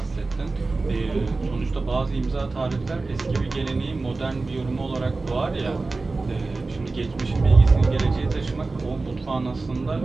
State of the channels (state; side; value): quieter; left; 3.6 dB